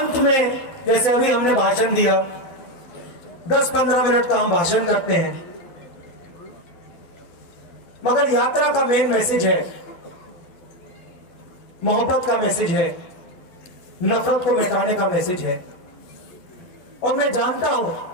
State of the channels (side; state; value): right; late; 12 ms